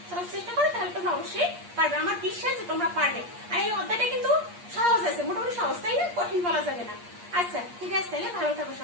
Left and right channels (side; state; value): left; late; 8.5 ms